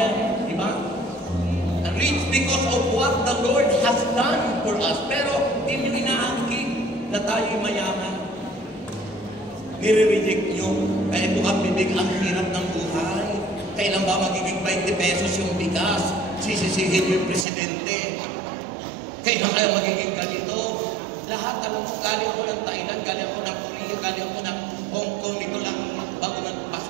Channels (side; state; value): left; drops out; at 17.4 s